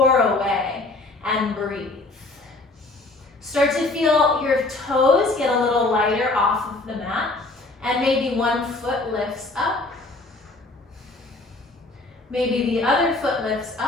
away and breathe. Start to feel your toes get a little lighter off of the mat, and maybe one foot lifts up. Maybe the other foot lifts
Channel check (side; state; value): right; quieter; 3.1 dB